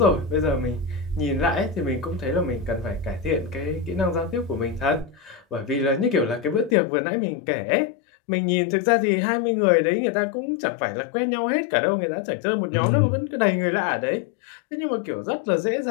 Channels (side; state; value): right; drops out; at 6.8 s